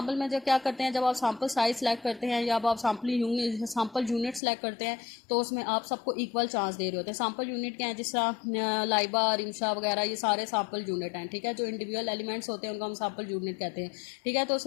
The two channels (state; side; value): drops out; right; at 4.4 s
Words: में जो क्या करते हैं, जब आप सैंपल साइज सेलेक्ट करते हैं या आप सैंपल यूनिट सेलेक्ट करते हैं तो उसमें आप सबको इक्वल चांस दे रहे होते हैं। सैंपल यूनिट क्या है, जिस तरह लाइबा, रिमशा वगैरह, ये सारे सैंपल यूनिट हैं। ठीक है, जो इंडिविजुअल एलिमेंट्स होते हैं उनको हम सैंपल यूनिट कहते हैं। ठीक है, तो